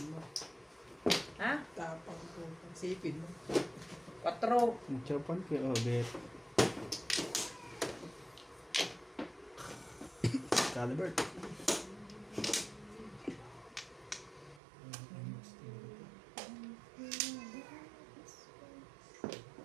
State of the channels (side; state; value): left; drops out; at 14.6 s